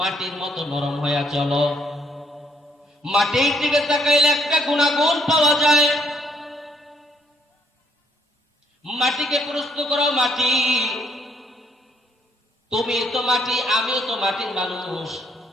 মতো নরম হইয়া চলো। মাটির দিকে তাকাইলে একটা গুণাগুণ পাওয়া যায়। মাটিকে প্রশ্ন করো, মাটি তুমি তো মাটি, আমিও তো মাটির মানুষ,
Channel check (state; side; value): normal; both; correlation 0.68